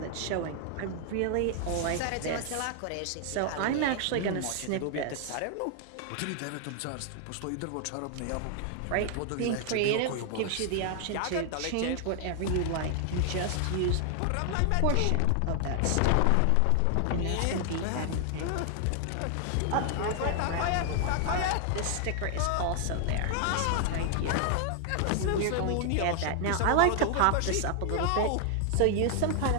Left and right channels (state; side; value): different; both; correlation 0.00